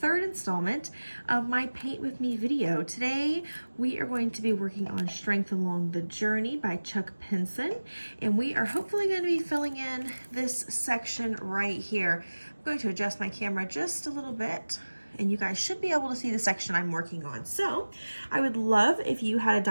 installment of my Paint With Me video. Today we are going to be working on Strength Along the Journey by Chuck Pinson, and we are hopefully going to be filling in this section right here. I'm going to adjust my camera just a little bit, and you guys should be able to see the section I'm working on. So I would love if you had a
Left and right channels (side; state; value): both; inverted; correlation -1.00